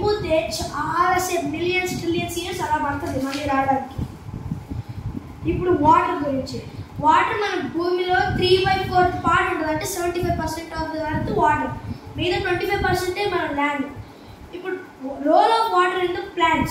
చాలాసేపు మిలియన్స్ ట్రిలియన్స్ ఇయర్స్ అలా పడుతుంది మళ్ళీ రావడానికి. ఇప్పుడు వాటర్ గురించి. వాటర్ మన భూమిలో 3/4 పార్ట్ ఉంటుంది, అంటే 75% ఆఫ్ ది ఎర్త్ వాటర్, మిగతా 25% మన ల్యాండ్. ఇప్పుడు role of water in the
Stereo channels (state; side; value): identical; both; correlation 1.00